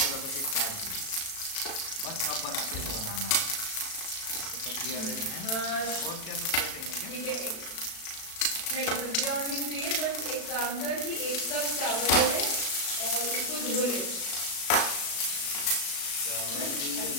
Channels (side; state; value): right; late; 36 ms